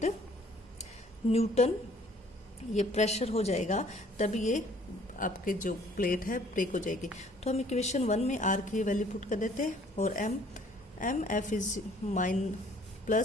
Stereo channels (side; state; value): both; normal; correlation 0.58